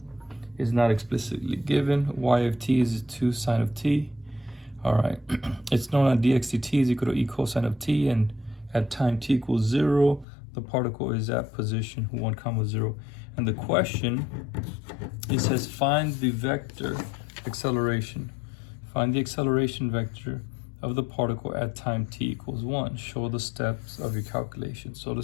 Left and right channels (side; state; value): right; drops out; at 10.2 s